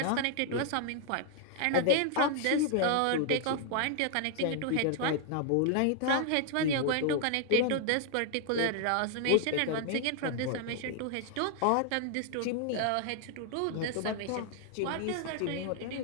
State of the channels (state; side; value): different; both; correlation 0.00